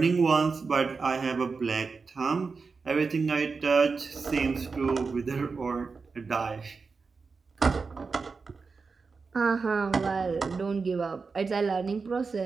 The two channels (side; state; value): left; quieter; 4.7 dB